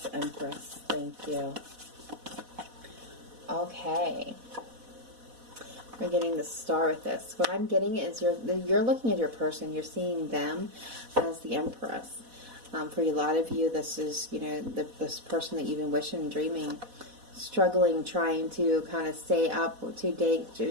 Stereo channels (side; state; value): left; late; 4.1 ms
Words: Empress? Thank you. Okay. We're getting the Star with this. What I'm getting is you're looking at your person. You're seeing them as the Empress. For a lot of you, this is, you know, this person that you've been wishing, dreaming, struggling, trying to kind of stay up to date,